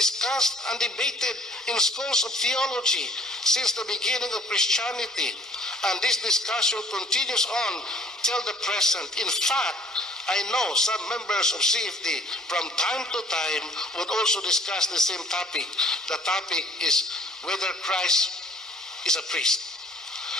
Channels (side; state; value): both; normal; correlation 0.56